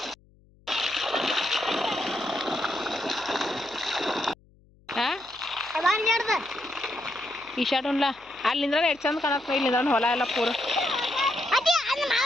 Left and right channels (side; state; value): left; noise; hum, 30 dB below the sound